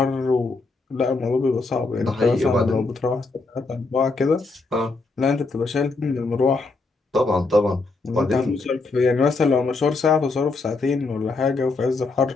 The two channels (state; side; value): quieter; right; 3.7 dB